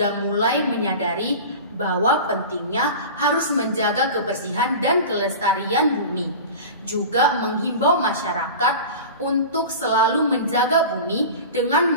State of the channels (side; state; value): both; inverted; correlation -0.33